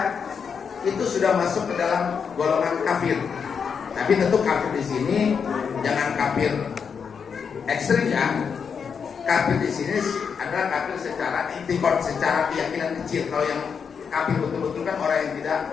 itu sudah masuk ke dalam golongan kafir. Tapi tentu kafir di sini jangan kafir ekstrim ya. Kafir di sini adalah kafir secara intikad, secara keyakinan kecil. Kalau yang kafir betul-betul kan orang yang tidak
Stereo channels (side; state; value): right; quieter; 6.4 dB